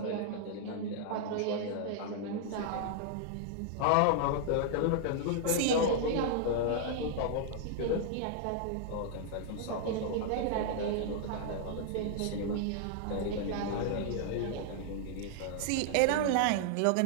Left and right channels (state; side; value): different; both; correlation -0.01